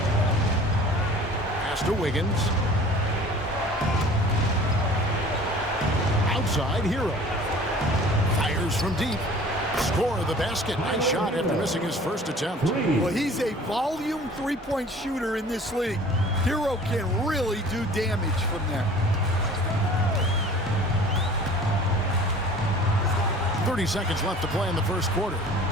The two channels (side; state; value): both; normal; correlation 0.47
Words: Pass to Wiggins. Outside, Hero. Fires from deep. Score of the basket. Nice shot after missing his first attempt. Well, he's a volume three-point shooter in this league. Hero can really do damage from there. 30 seconds left to play in the first quarter.